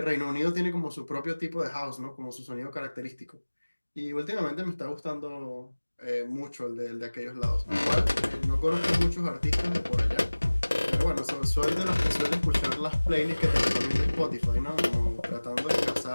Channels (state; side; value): inverted; both; correlation -1.00